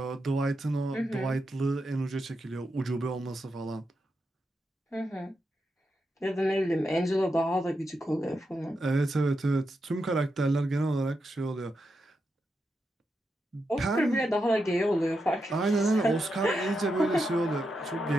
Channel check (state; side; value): normal; both; correlation 0.86